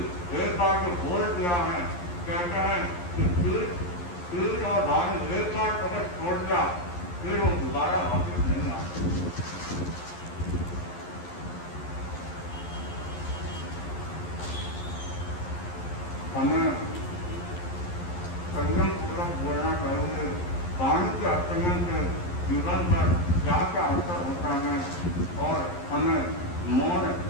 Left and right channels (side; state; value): right; late; 11 ms